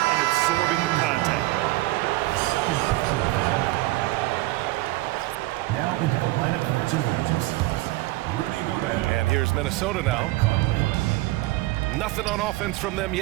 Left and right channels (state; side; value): quieter; left; 19.5 dB